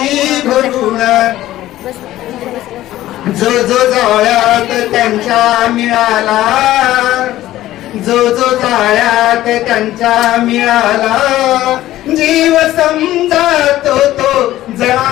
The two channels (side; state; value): right; quieter; 14.7 dB